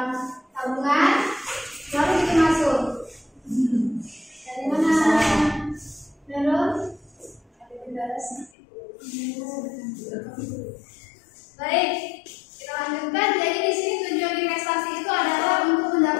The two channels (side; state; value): right; drops out; at 8.5 s